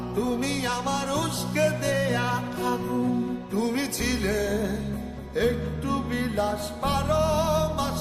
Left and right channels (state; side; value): identical; both; correlation 1.00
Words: তুমি আমার উস্কে দেয়া আগুন। তুমি ছিলে একটু বিলাস, 12